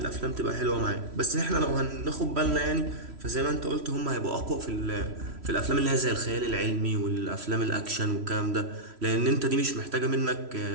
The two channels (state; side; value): late; left; 3.1 ms